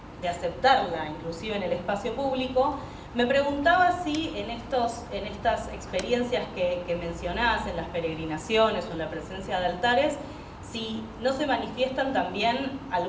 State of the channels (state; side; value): identical; both; correlation 1.00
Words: de aceptarla, inclusive en el espacio público. Me preguntaba si en estas experiencias que mencionás, en las peregrinaciones o en la presencia de altares, si no se manifiestan también